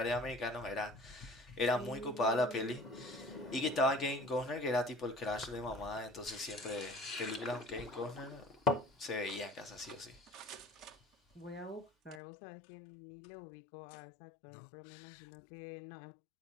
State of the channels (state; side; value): drops out; right; at 12.2 s